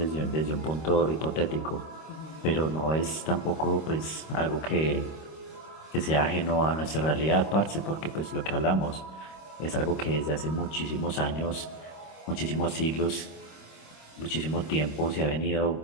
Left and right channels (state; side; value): late; right; 26 ms